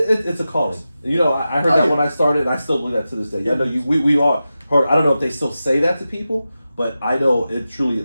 a calling. I heard that when I started, and I still believe that to this day. I know we all heard. I don't know if they still say that to people, but I know it truly,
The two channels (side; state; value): both; inverted; correlation -0.93